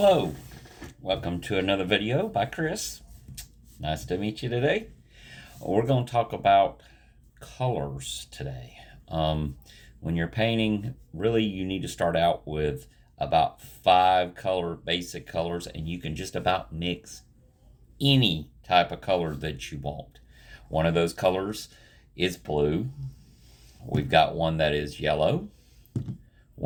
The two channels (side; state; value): both; identical; correlation 1.00